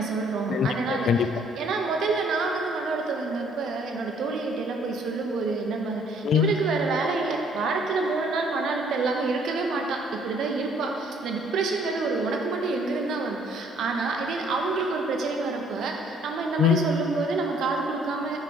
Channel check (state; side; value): normal; both; correlation 0.61